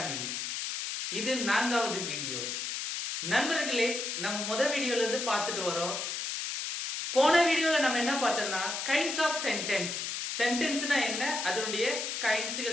இது 4வது வீடியோ. நண்பர்களே, நம்ம முதல் வீடியோல இருந்து பார்த்துட்டு வரோம். போன வீடியோல நம்ம என்ன பார்த்தோம்னா கைண்ட்ஸ் ஆஃப் சென்டென்ஸ், சென்டென்ஸ்னா என்ன, அதனுடைய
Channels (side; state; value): left; noise; hiss, 3 dB below the sound